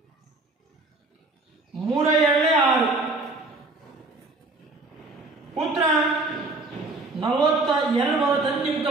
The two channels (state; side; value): quieter; left; 3.2 dB